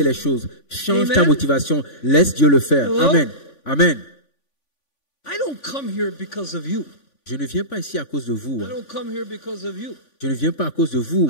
it. les choses. Change Amen. ta motivation. Laisse Dieu le faire. Hello? Amen. Amen. I don't come here because of you. Je ne viens pas ici à cause de vous. I don't come here because of you. Je ne viens pas à cause de vous.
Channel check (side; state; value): right; late; 3.5 ms